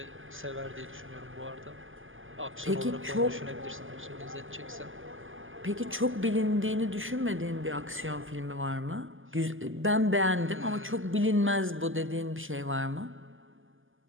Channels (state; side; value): late; left; 0.58 ms